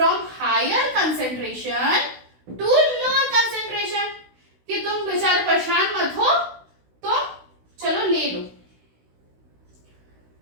higher concentration to lower concentration, कि तुम बेचारे परेशान मत हो, तो चलो ले लो।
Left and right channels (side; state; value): left; late; 16 ms